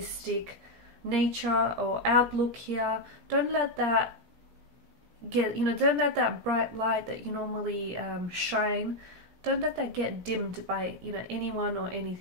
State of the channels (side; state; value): left; late; 17 ms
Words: nature or outlook here, don't let that get, you know, don't let that bright light that you normally shine, don't let that get dimmed by, you know, anyone or